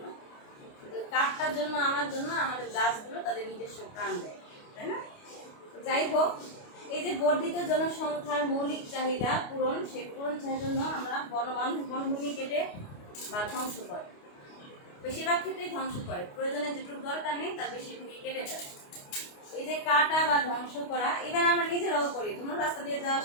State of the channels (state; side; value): late; right; 29 ms